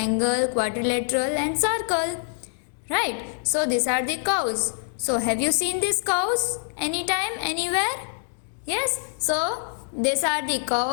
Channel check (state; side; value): silent; right; digital silence